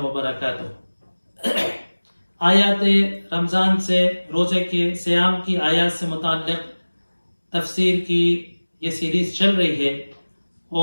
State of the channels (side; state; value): both; inverted; correlation -1.00